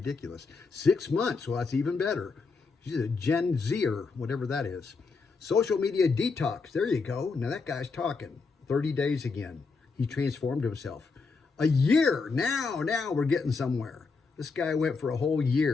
6 months. Well, that's even better. She's a Gen Zer, whatever that is. Social media detox. There you go. Now that guy's talking. 30 days again. He transformed himself. A year. Now we're getting somewhere. This guy went for a whole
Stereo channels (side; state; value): right; quieter; 4.5 dB